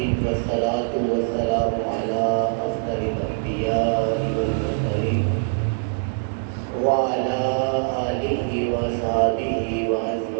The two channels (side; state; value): left; silent; digital silence